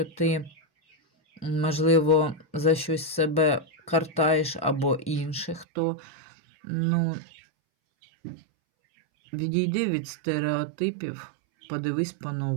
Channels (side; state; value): left; drops out; at 5.7 s